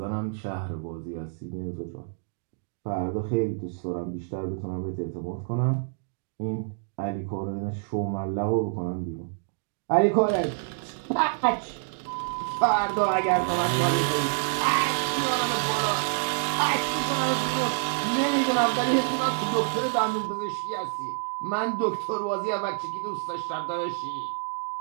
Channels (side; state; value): left; silent; digital silence